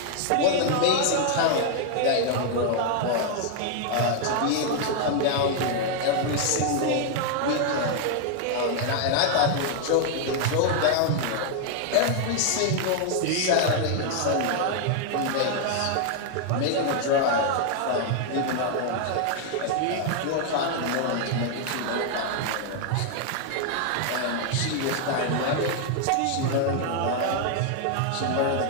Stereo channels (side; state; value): both; different; correlation 0.00